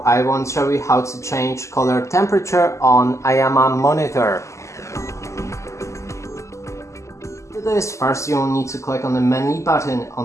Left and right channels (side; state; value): right; late; 0.14 ms